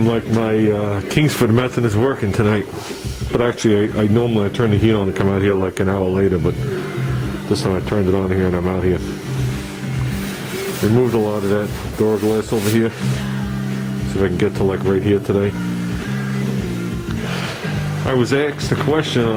like my Kingsford method is working tonight. But actually, I normally turn the heat on to come out here like an hour later, but this time I turned it on here and I'm out here. Removed a lot of that door glass over here. See if I can get to like right here today. I was asked a question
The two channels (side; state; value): both; identical; correlation 1.00